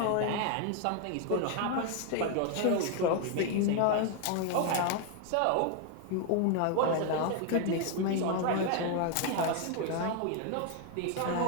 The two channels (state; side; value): different; both; correlation 0.00